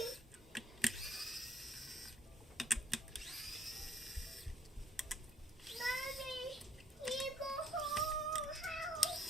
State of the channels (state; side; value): normal; both; correlation 0.65